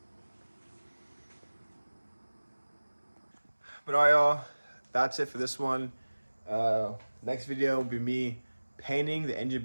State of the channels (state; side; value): inverted; both; correlation -1.00